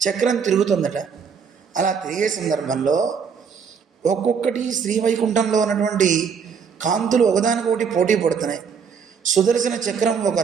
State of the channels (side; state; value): left; quieter; 6.4 dB